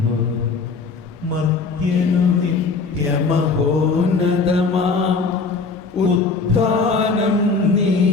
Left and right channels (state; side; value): quieter; right; 4.4 dB